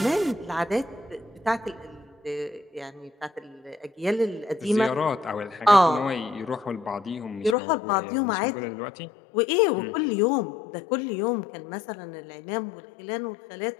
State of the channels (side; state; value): right; drops out; at 7.6 s